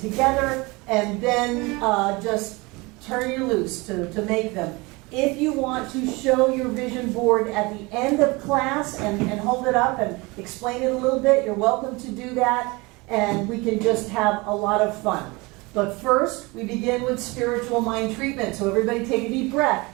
and then just turn you loose to make them. If you want to show your vision board at the end of class and hold it up and explain it a little bit, you're welcome to do that, and we can just have a lot of fun. But first, we begin with spiritual mind treatment. So everybody take a deep breath.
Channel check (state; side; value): quieter; left; 24.9 dB